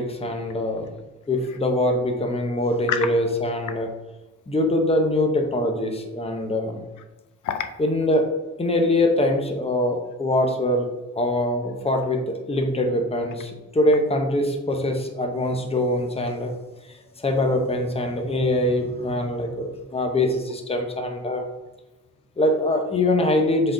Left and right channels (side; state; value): both; normal; correlation 0.36